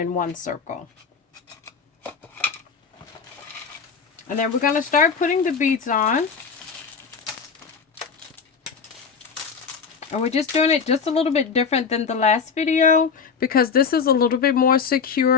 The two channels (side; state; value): right; quieter; 5.9 dB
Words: one circle. And then we're going to start putting the beads on. And we're just doing it just a little bit different than the last video because this is a little bit more